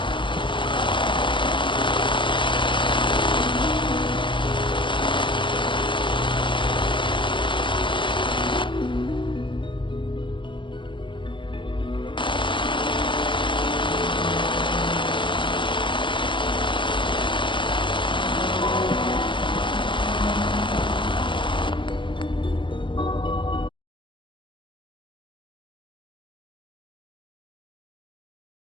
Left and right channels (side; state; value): right; late; 0.24 ms